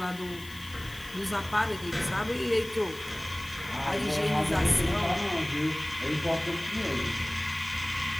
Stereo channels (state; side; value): noise; left; hiss, 18 dB below the sound